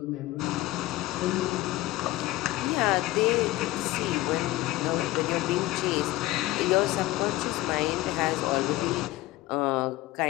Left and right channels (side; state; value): right; quieter; 17.6 dB